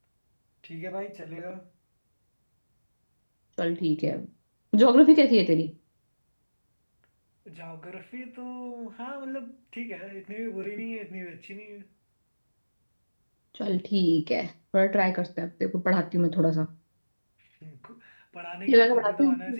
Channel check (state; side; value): inverted; both; correlation -1.00